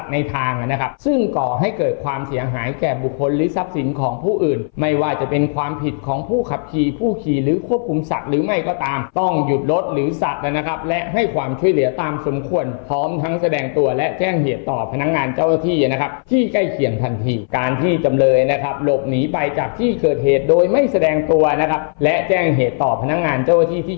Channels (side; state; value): right; silent; 62 dB below the other